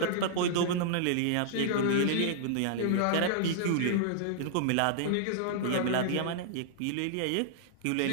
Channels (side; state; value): both; different; correlation -0.01